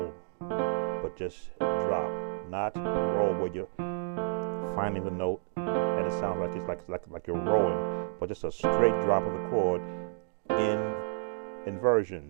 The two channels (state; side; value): silent; left; digital silence